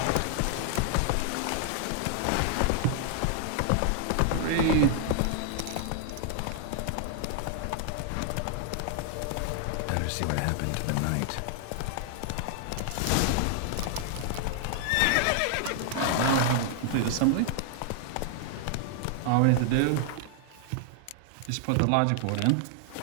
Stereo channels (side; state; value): both; different; correlation 0.00